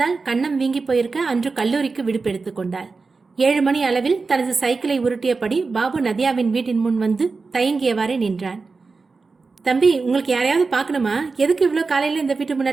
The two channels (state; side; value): quieter; left; 4.3 dB